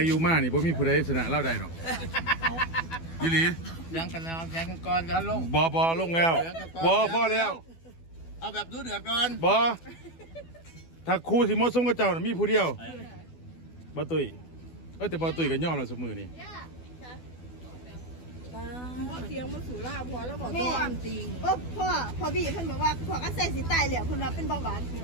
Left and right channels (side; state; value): right; late; 12 ms